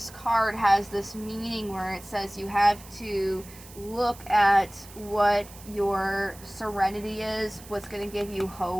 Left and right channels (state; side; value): noise; right; hiss, 19 dB below the sound